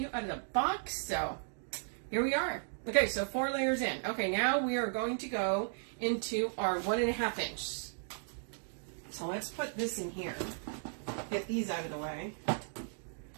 out of the box, so here we are. Okay, so 4 layers in. Okay, now we are going to go into our 1.5 inch. So let's put this in here. Get these out of the way.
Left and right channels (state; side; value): silent; left; digital silence